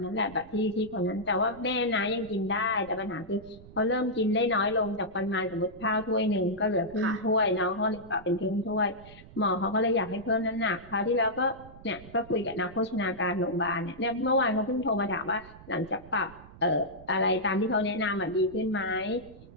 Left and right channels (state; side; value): noise; right; rumble, 19 dB below the sound